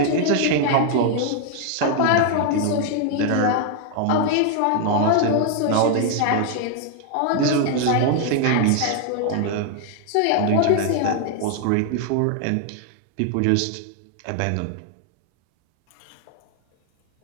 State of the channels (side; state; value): both; different; correlation 0.00